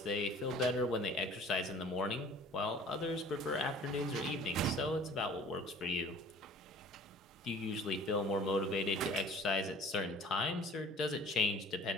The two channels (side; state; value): both; normal; correlation 0.48